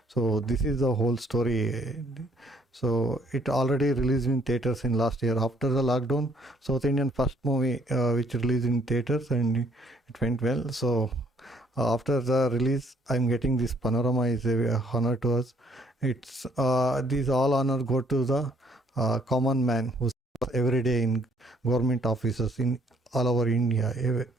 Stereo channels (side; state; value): both; normal; correlation 0.65